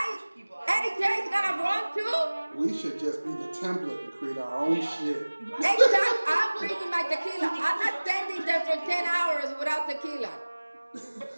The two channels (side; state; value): both; inverted; correlation -1.00